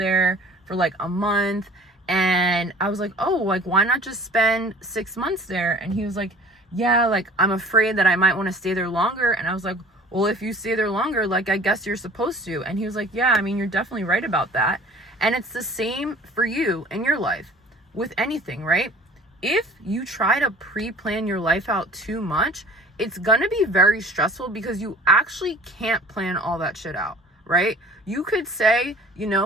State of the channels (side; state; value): both; normal; correlation 0.47